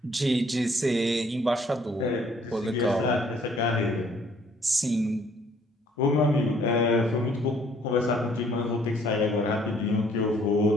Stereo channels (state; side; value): normal; both; correlation 0.61